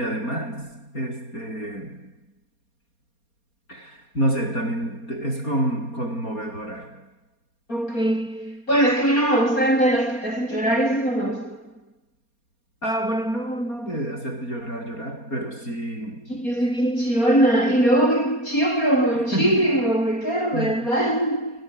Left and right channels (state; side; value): late; right; 4.3 ms